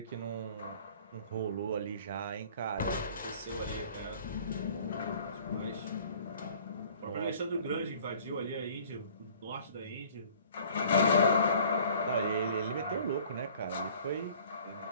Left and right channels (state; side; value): inverted; both; correlation -0.52